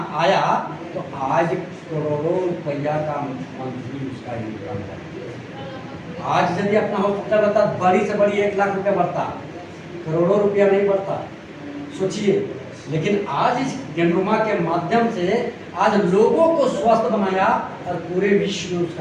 आया, तो आज करोड़ों रुपया का मंथली उसका इनकम है। आज यदि अपना हॉस्पिटल रहता, बड़ी से बड़ी 1 लाख रुपया बढ़ता, करोड़ों रुपया नहीं बढ़ता, सोचिए। लेकिन आज इस ज्ञानवर्मा के माध्यम से आज लोगों को स्वस्थ बनाया और पूरे विश्व में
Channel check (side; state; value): both; identical; correlation 1.00